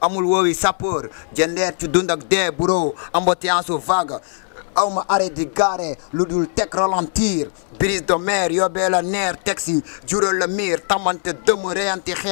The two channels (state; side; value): silent; right; 66 dB below the other